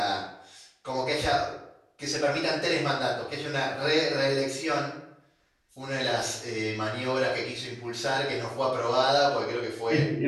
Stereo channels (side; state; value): both; identical; correlation 1.00